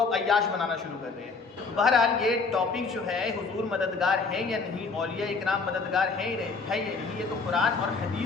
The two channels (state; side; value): quieter; right; 4.4 dB